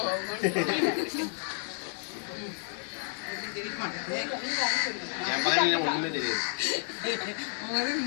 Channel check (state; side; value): silent; right; 57 dB below the other